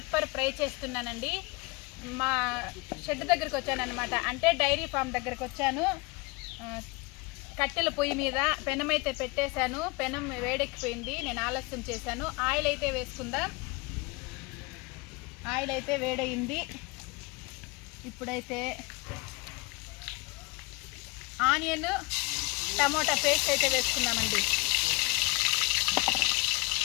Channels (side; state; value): right; quieter; 26.2 dB